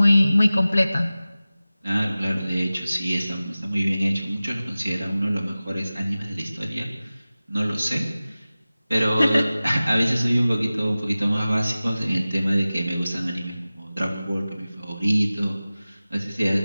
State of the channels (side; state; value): both; inverted; correlation -0.97